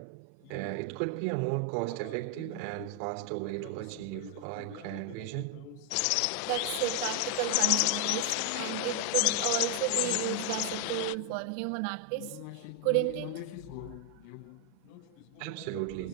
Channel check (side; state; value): both; different; correlation 0.01